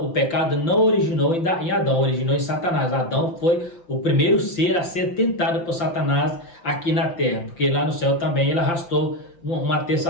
o pecado não originou em Adão, originou em Satanás. Adão foi o primeiro ser a ser tentado por Satanás aqui na terra, porque lá no céu também ele arrastou uma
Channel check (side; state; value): right; late; 5.8 ms